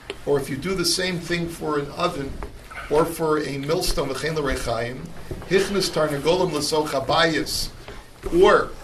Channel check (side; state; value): both; identical; correlation 1.00